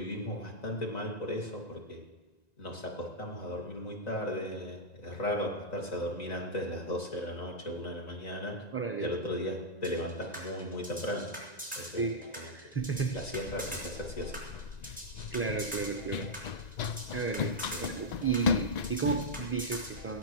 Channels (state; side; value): late; right; 1.9 ms